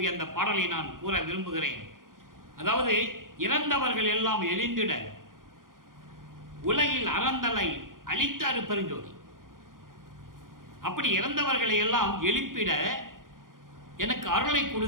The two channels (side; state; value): left; late; 0.90 ms